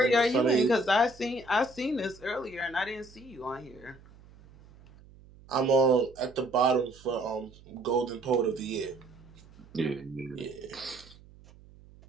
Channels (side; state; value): right; noise; hum, 23 dB below the sound